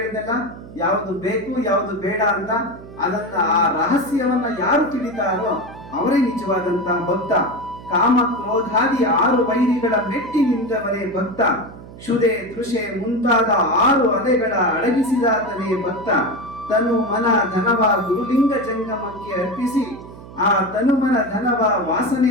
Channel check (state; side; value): noise; right; hum, 16 dB below the sound